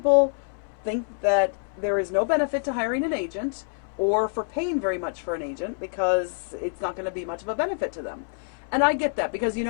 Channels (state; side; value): silent; right; 61 dB below the other